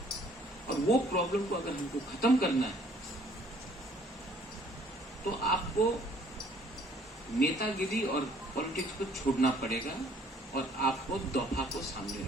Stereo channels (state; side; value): normal; both; correlation 0.60